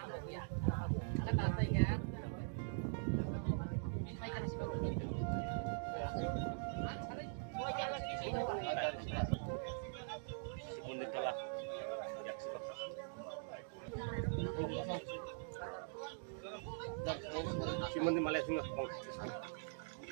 Simon di Malaysia nggak kong.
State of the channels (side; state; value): left; silent; digital silence